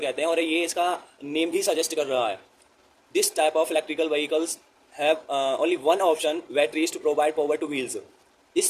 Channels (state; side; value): identical; both; correlation 1.00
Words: हैं, और ये इसका नेम भी सजेस्ट कर रहा है। This type of electrical vehicles have only one option, batteries to provide power to wheels.